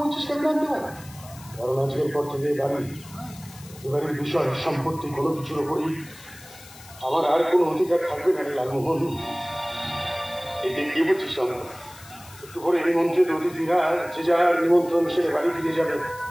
কেন জানতে পারি? কারণ আজকের পর থেকে এবারের বিষয় সম্পত্তি কোনো কিছুর উপরই আমার আর কোনো অধিকার থাকবে না রে লালমোহন। এতে কি বলছিস আমরা? একটু করে নিমন্ত্রিত অতিথিরা যে যার নিমন্ত্রণ সেরে বাড়ি ফিরে যাবে,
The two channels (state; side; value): noise; left; hiss, 20 dB below the sound